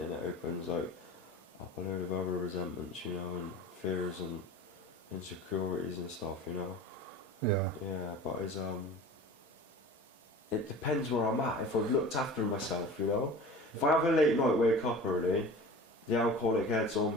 then it opens like up a load of other resentments, you know, and fears and insecurities and stuff, you know. Yeah, but it's it depends where I'm at. If I've looked after myself, you know, if I have a late night, wake up early, the alcoholic head's on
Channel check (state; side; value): normal; both; correlation 0.39